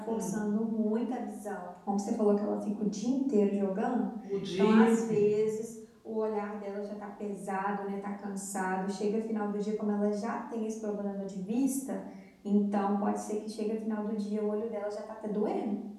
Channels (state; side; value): identical; both; correlation 1.00